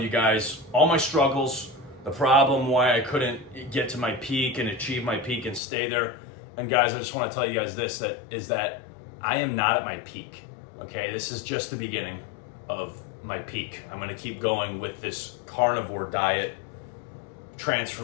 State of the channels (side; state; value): right; drops out; at 5.6 s